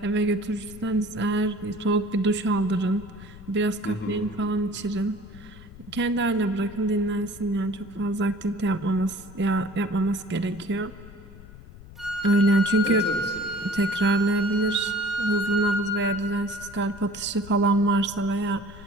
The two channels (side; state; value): left; noise; rumble, 18 dB below the sound